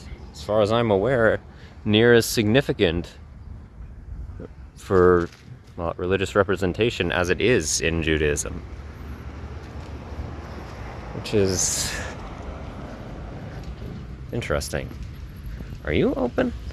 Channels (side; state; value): both; identical; correlation 1.00